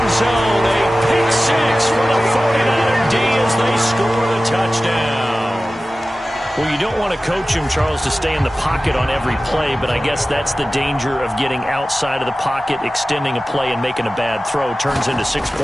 zone. A pick six for the 49er D as they score the touchdown. Well, you don't want to coach him, Charles, to stay in the pocket on every play, but I guess that's the danger of getting outside of the pocket, extending a play, and making a bad throw. Turns into 6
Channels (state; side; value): normal; both; correlation 0.96